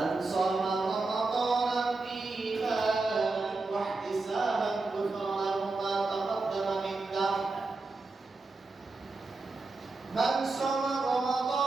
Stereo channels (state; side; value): quieter; left; 3.6 dB